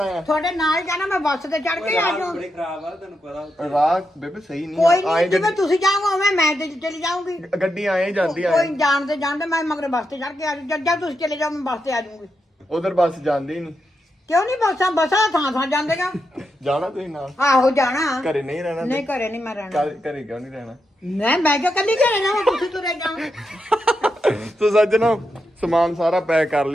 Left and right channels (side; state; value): both; normal; correlation 0.85